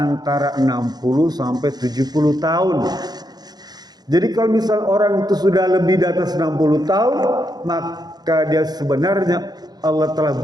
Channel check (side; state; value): left; late; 0.19 ms